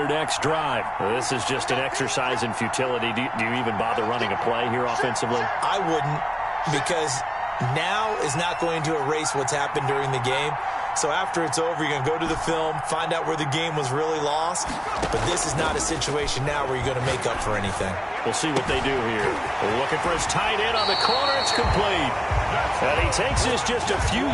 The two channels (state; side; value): identical; both; correlation 1.00